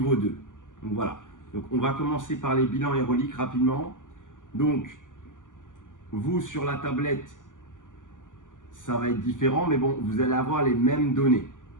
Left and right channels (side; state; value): right; late; 0.88 ms